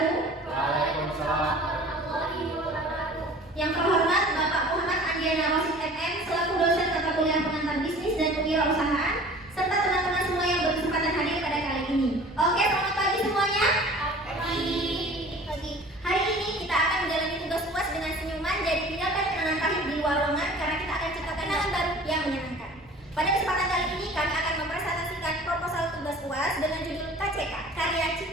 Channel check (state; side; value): normal; both; correlation 0.45